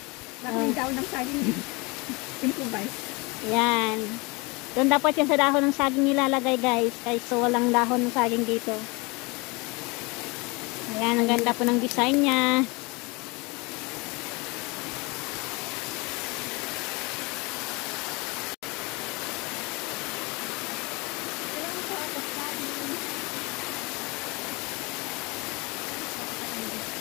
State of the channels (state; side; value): quieter; right; 27.0 dB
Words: Yung dahon ng saging. Improvise. Yan. Doon dapat yan sa dahon ng saging nilalagay guys. Kaysa walang dahon ng saging dito. Ayan, ang ganda po ng design niya.